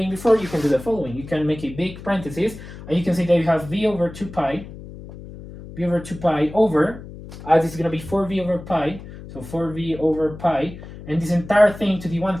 before, you can do the following. You can make a big parenthesis, and you can see that you have v over 2 pi, over, this is going to be 4v over pi, so 4v over pi, and this entire thing to the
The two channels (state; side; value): noise; left; hum, 14 dB below the sound